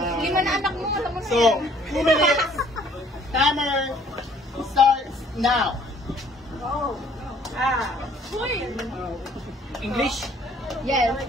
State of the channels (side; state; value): both; normal; correlation 0.59